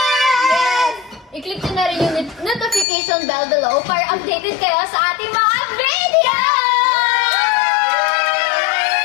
Yes! I-click nyo na rin yung notification bell below para updated kayo sa ating mga video!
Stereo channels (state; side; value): drops out; right; at 2.9 s